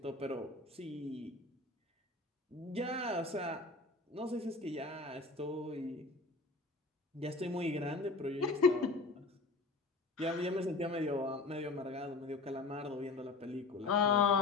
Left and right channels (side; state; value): right; quieter; 3.5 dB